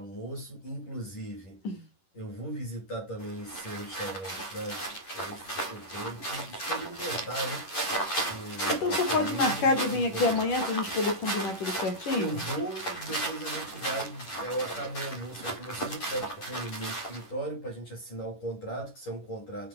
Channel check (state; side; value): late; right; 10 ms